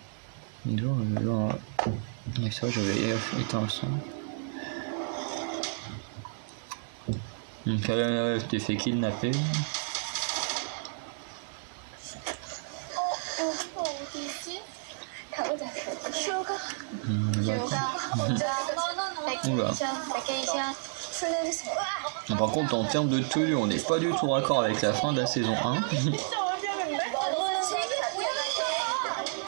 Et ça, j'avais éteint le son. Donc là, je t'ai fait kidnapper. Oula. Par contre, en termes de tenue, on n'est pas du tout raccord avec la fin de la saison 1.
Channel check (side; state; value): left; silent; digital silence